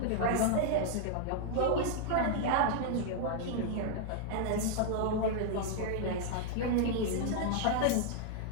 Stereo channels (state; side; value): different; both; correlation 0.00